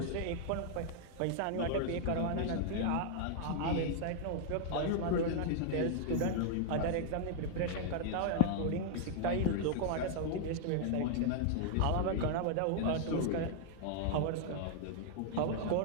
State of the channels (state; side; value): different; both; correlation 0.00